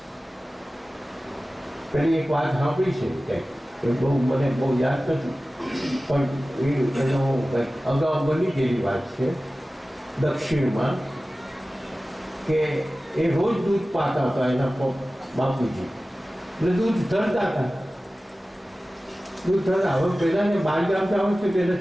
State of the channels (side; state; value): both; normal; correlation 0.96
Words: પેલી એક વાત સાંભળી છે કંઈક, એ બહુ મને બહુ યાદ નથી, પણ એનો અગાઉ બની ગયેલી વાત છે દક્ષિણમાં, કે એ રોજ દૂધ પાતા હતા એના બાપુજી, એટલે દૂધ ધરતા હતા. દૂધ ધરતા હવે પહેલાને બાર ગામ જવું છે કે